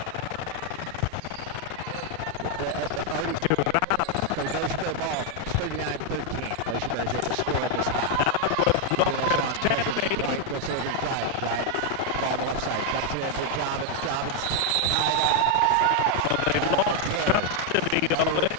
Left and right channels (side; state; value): both; different; correlation 0.00